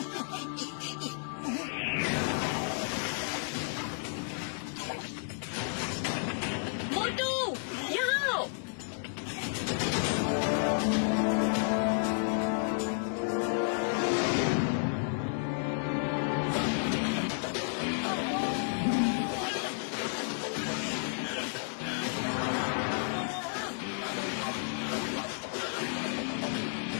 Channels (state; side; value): silent; right; digital silence